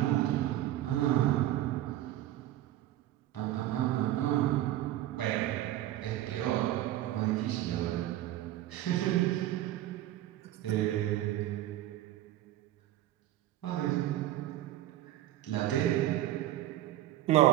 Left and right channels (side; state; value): left; quieter; 14.2 dB